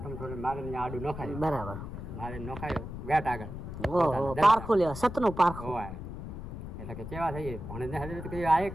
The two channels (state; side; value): noise; left; rumble, 9 dB below the sound